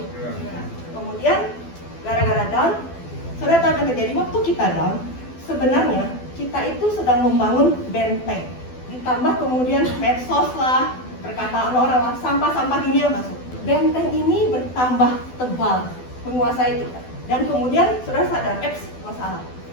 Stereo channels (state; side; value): late; right; 12 ms